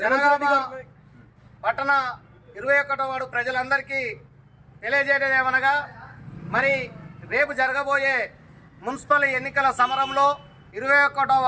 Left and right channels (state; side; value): identical; both; correlation 1.00